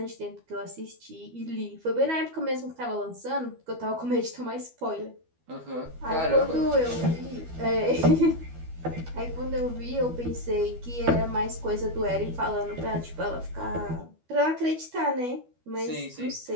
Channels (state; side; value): late; left; 12 ms